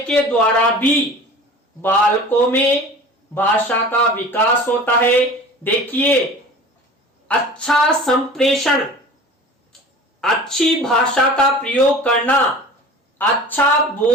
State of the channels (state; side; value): normal; both; correlation 0.40